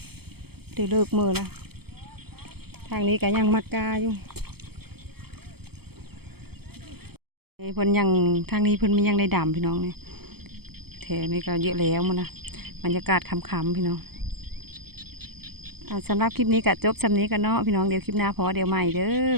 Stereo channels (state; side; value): late; left; 0.96 ms